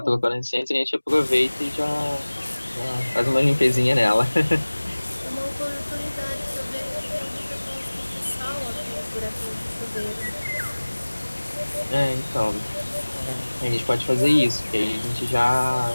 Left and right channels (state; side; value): inverted; both; correlation -1.00